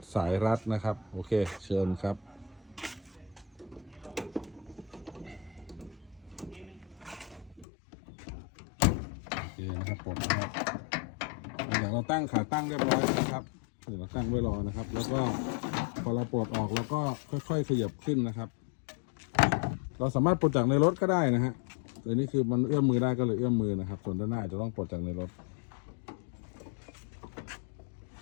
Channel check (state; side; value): drops out; right; at 7.7 s